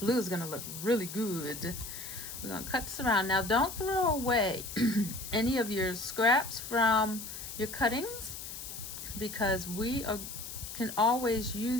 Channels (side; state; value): left; noise; hiss, 9 dB below the sound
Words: is going to look really good. We're going to cut this around. Now, don't throw away any of your scraps from your cuttings, because we can always